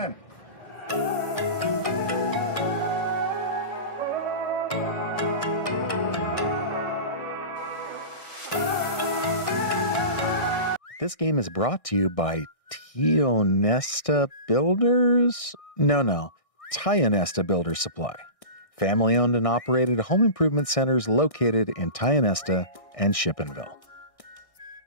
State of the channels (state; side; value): late; right; 1.6 ms